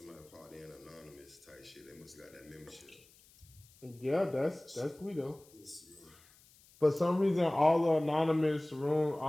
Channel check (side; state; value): left; noise; hiss, 27 dB below the sound